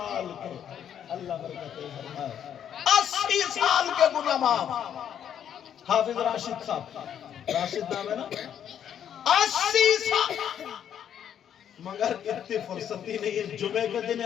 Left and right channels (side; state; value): right; quieter; 9.3 dB